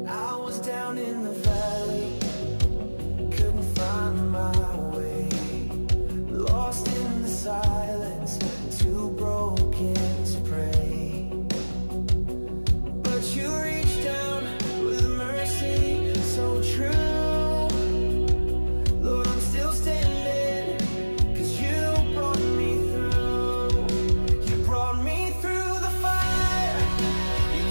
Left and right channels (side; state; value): both; inverted; correlation -1.00